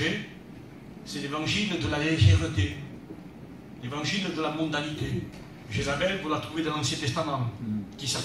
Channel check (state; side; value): identical; both; correlation 1.00